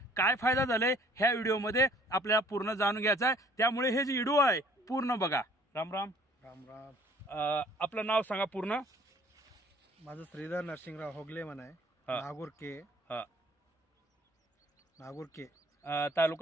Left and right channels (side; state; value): both; normal; correlation 0.55